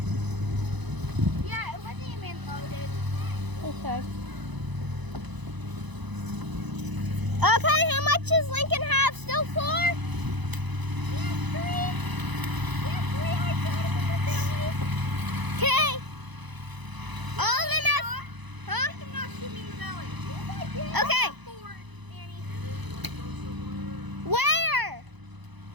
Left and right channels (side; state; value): left; late; 1.0 ms